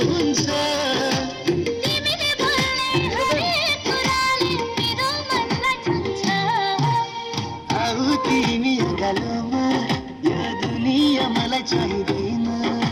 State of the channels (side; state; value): both; identical; correlation 1.00